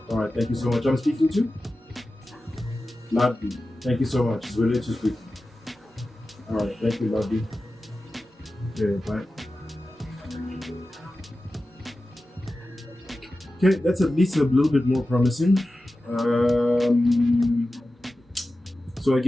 All right. Thank you so much. I'm speaking to Ladby. Thank you so much. It's related to speak. All right. Thank you, Ladby. Okay. Bye. Okay, that's at least a little bit more promising. So I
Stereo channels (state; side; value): normal; both; correlation 0.94